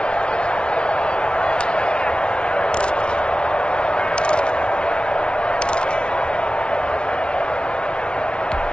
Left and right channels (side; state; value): right; late; 0.056 ms